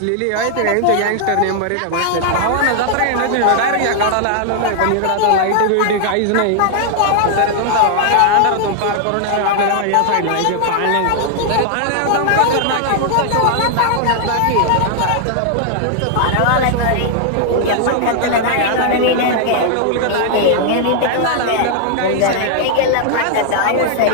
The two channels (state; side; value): different; both; correlation 0.00